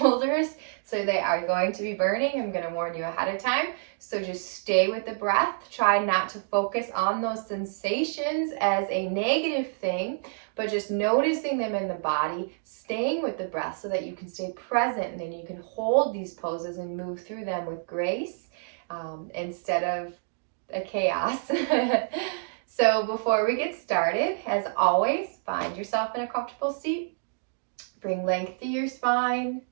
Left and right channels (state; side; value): silent; left; digital silence